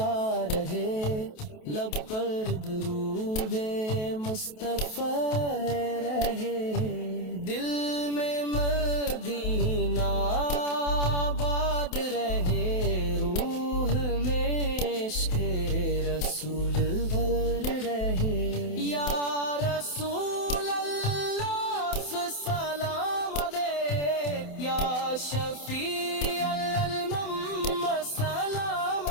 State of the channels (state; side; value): late; right; 28 ms